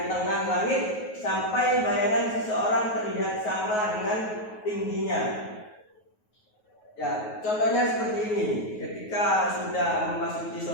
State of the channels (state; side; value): late; right; 9.4 ms